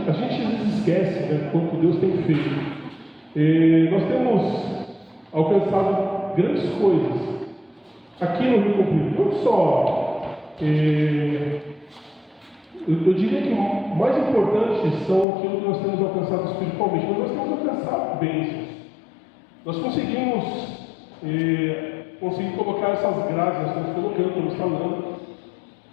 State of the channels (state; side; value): drops out; right; at 15.2 s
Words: às vezes esquece, né, quanto Deus tem feito. Nós temos alcançado grandes coisas aqui no Rio Comprido, não só. Eu diria que o mais importante são aquilo que nós temos alcançado espiritualmente, mas nós temos alcançado bênçãos. Nós conseguimos colocar essas graças, estamos colocando, estamos falando.